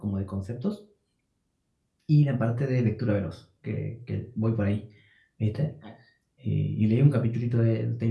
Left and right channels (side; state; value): both; identical; correlation 1.00